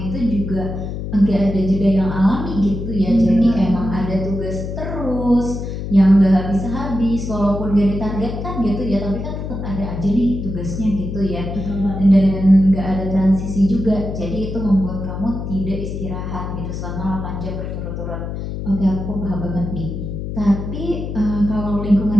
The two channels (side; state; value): left; noise; hum, 5 dB below the sound